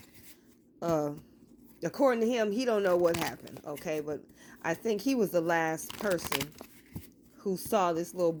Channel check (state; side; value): identical; both; correlation 1.00